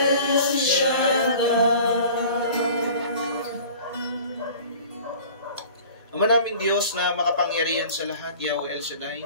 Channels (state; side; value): inverted; both; correlation -0.44